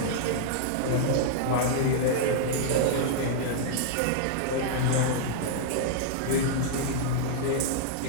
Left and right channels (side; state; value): both; different; correlation -0.01